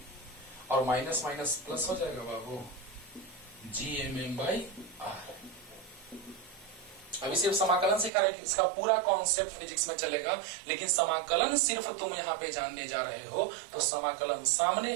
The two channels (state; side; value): drops out; left; at 8.1 s